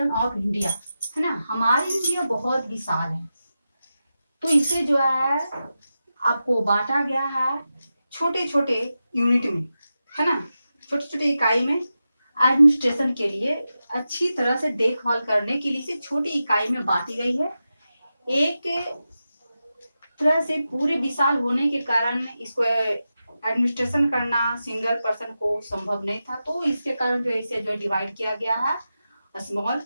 ऑफ इंडिया, है ना। हमारी इंडिया बहुत विशाल है, तो इसे जो है आपको बांटा गया है छोटे छोटे यूनिट में, है ना, छोटे छोटे इकाई में। एडमिनिस्ट्रेशन के लिए अच्छी तरह से देखभाल करने के लिए इसे छोटी इकाई में बांटी गई है। एक तरह से पूरे विशाल होने के कारण इसको एडमिनिस्ट्रेशन करना सिंगल पर्सन को संभव नहीं था, तो इसके कारण जो इसे जो डिवाइड किया गया है स्मॉल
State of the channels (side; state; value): both; inverted; correlation -0.91